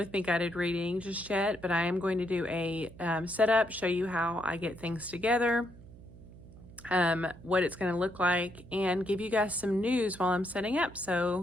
me guided reading just yet, but I am going to do a setup, show you how I get things together, what it's going to look like, and give you guys some news while I'm setting up.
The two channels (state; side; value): noise; right; hum, 19 dB below the sound